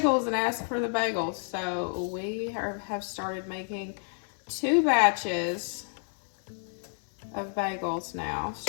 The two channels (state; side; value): silent; right; 58 dB below the other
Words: and ask for the bagels. So we have started making 2 batches of bagels now,